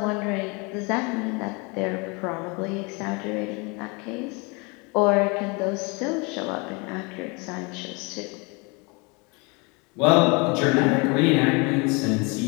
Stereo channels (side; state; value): right; quieter; 29.4 dB